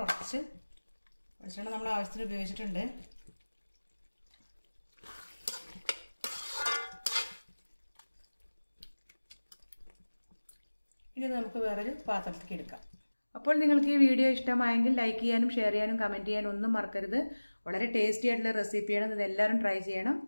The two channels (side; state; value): both; inverted; correlation -1.00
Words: വെളിച്ചെണ്ണ നമ്മൾ ആവശ്യത്തിന് ഉപയോഗിച്ചിട്ടുണ്ട്. ഇനി നമുക്ക് വേറൊരു പാത്രത്തിലേക്ക് എടുക്കാം. അപ്പോൾ നിങ്ങൾക്ക് ഈ വീഡിയോ ഇഷ്ടമായെങ്കിൽ ലൈക്ക് ചെയ്യാനും ഷെയർ ചെയ്യാനും കമൻറ്റ് ചെയ്യാനും ഒന്നും മറക്കരുത്. വളരെ ടേസ്റ്റി ആയിട്ടുള്ള റെസിപ്പിയാണ്. ഇത് എല്ലാവരും ട്രൈ ചെയ്യണം.